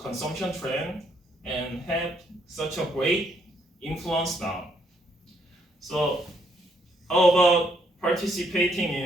trend and have such a great influence now. So how about participating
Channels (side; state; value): both; normal; correlation 0.71